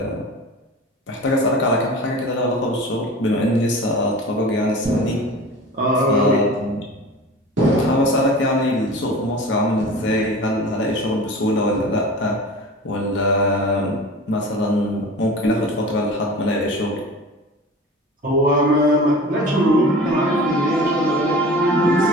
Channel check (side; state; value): both; normal; correlation 0.37